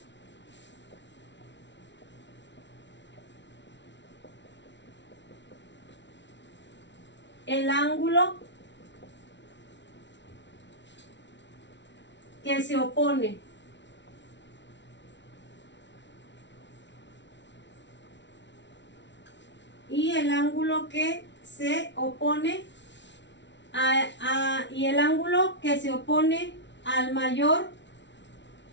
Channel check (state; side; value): late; right; 0.52 ms